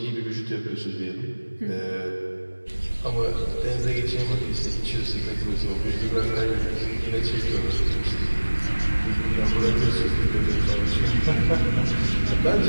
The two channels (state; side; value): inverted; both; correlation -1.00